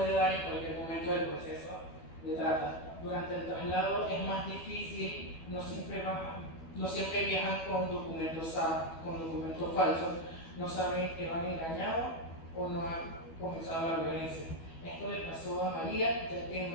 dar en cualquier momento del proceso de trata. Durante el traslado es más difícil, no siempre viajan con documentos falsos, no saben que van engañados o no han comenzado la violencia. Esto le pasó a María, ya que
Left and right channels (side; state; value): right; late; 12 ms